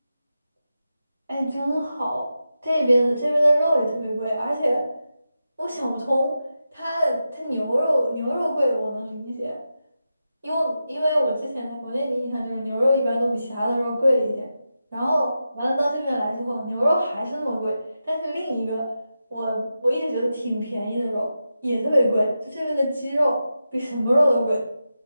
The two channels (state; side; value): inverted; both; correlation -0.90